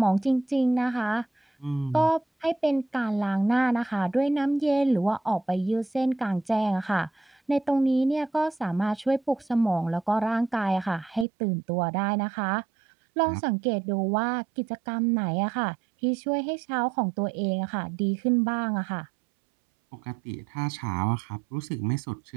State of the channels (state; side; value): drops out; left; at 11.2 s